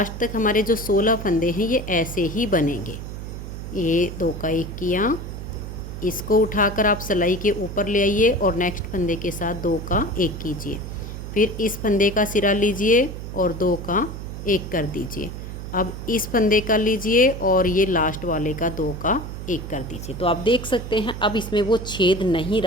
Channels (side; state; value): right; noise; hum, 8 dB below the sound